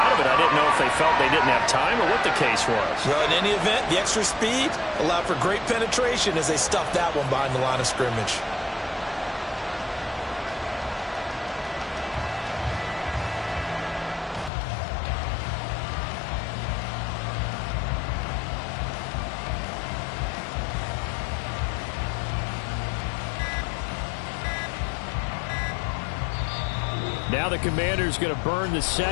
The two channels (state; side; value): drops out; right; at 14.5 s